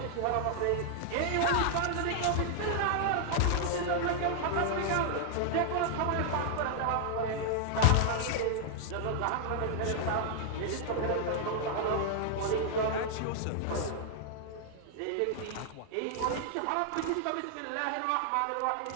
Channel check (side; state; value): both; different; correlation 0.00